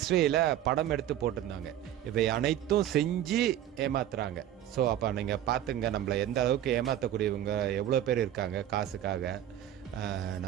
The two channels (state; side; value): quieter; left; 11.7 dB